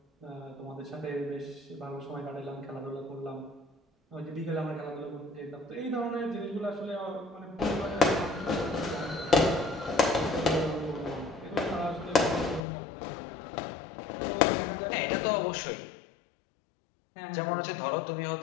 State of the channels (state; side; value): drops out; right; at 12.6 s